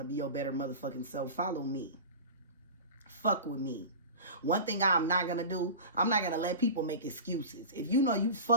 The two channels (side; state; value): both; inverted; correlation -0.31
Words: to be your better motherfucking self, follow me. Fuck with me. One thing I'm not going to do, I'm not going to let people make excuses. If you know you